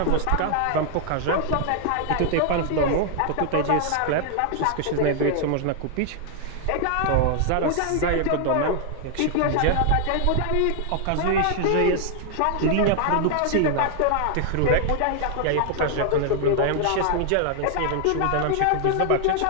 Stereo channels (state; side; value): different; both; correlation 0.00